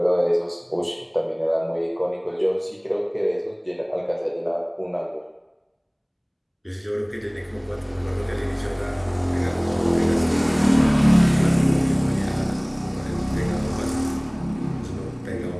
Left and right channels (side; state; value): both; identical; correlation 1.00